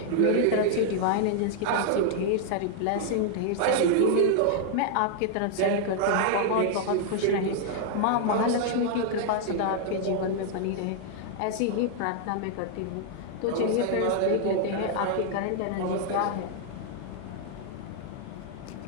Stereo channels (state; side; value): different; both; correlation 0.00